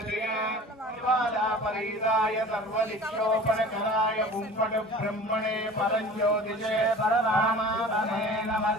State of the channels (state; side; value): normal; both; correlation 0.41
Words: ज्वालापरीताय सर्वदिक्षोपणकराय हुम्पटु ब्रह्मणे परञ्ज्योतिषे परमात्मने नमः